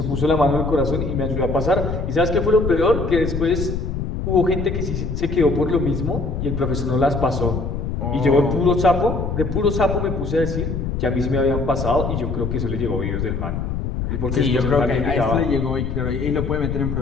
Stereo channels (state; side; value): noise; left; rumble, 3 dB below the sound